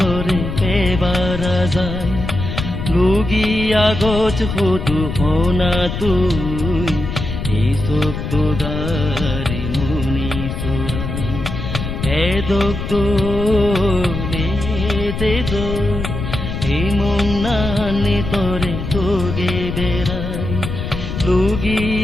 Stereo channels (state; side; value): noise; left; rumble, 5 dB below the sound